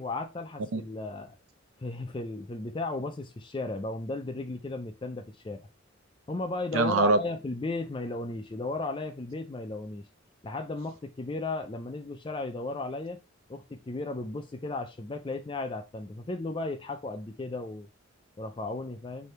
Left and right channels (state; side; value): normal; both; correlation 0.19